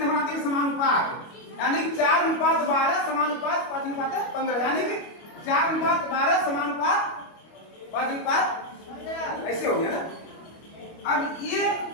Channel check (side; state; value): right; late; 25 ms